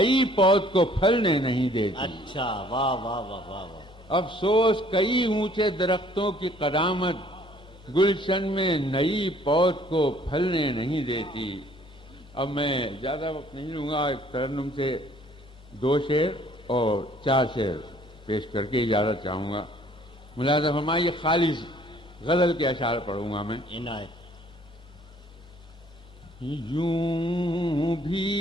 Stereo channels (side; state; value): both; normal; correlation 0.58